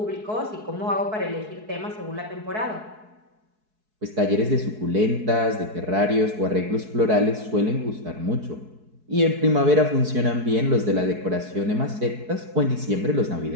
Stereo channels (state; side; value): late; left; 4.7 ms